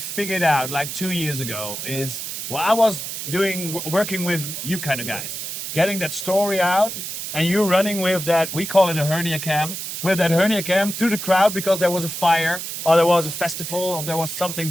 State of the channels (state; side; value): noise; right; hiss, 6 dB below the sound